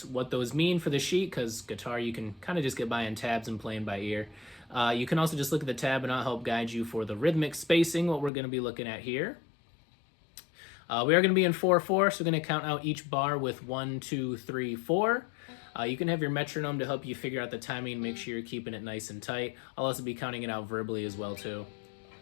what those mean for the sheet, because guitar you can kind of just get by in tabs and playing by ear, you can also just look at the tab and I'll help guide you for the rhythmic spacing, what we're going to be looking at here. We are going to be in 4/4, so we're going to count out each bar with 1, 2, 3, 4. You can have your metronome to help you figure out the timing and make sure you're keeping it nice and tight. I'll also be counting it out verbally as well too.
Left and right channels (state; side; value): drops out; right; at 8.3 s